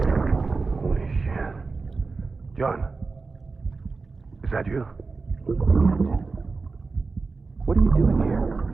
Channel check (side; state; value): left; quieter; 4.2 dB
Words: Holy shit. John, is that you? What are you doing here?